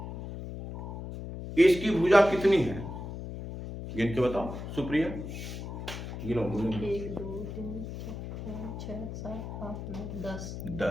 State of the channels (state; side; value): noise; left; hum, 8 dB below the sound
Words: इसकी भुजा कितनी है? गिन के बताओ सुप्रिया, गिनो। 1 2 3 4 5 6 7 8 9